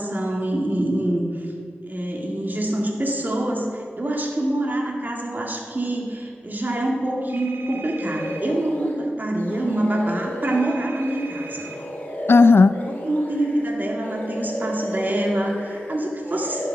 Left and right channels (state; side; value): normal; both; correlation 0.90